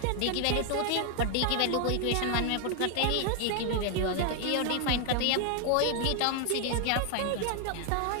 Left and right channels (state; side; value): different; both; correlation 0.00